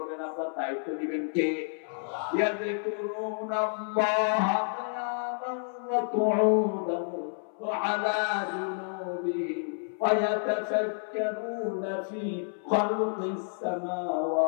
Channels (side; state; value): right; silent; 58 dB below the other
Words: আপনার দায়িত্ব নেবেন কে? ইয়াযকুরুনাল্লাহ কিয়ামান ওয়া কুউদান ওয়া আলা জুনুবিহিম ওয়া ইয়াতাফাক্কারুনা ফি খালকিস